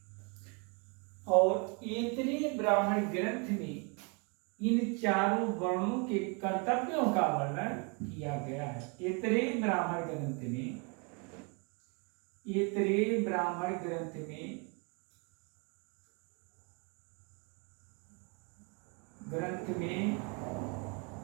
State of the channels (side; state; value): left; quieter; 33.7 dB